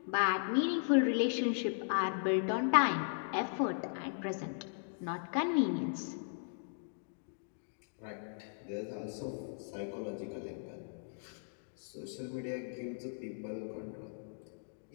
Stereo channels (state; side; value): silent; right; digital silence